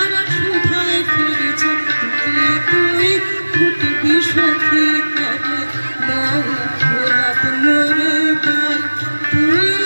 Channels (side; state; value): both; inverted; correlation -1.00